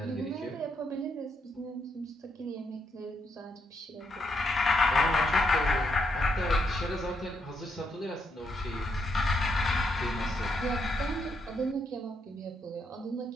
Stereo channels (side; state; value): both; normal; correlation 0.78